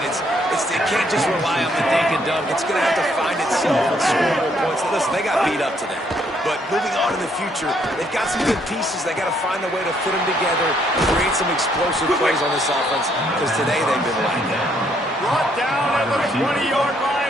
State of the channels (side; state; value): both; normal; correlation 0.70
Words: can't just rely on the dink and dunk. It's going to have to find itself and score more points. Listen, they got beat up today. But moving on in the future, they've got some good pieces. They got to find a way to fit them together, create some explosive plays on this offense, because today they've been lacking. Brought down at the 20-yard